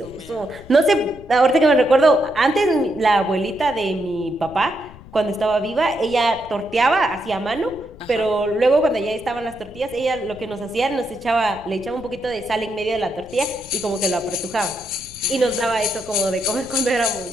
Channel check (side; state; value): left; noise; rumble, 19 dB below the sound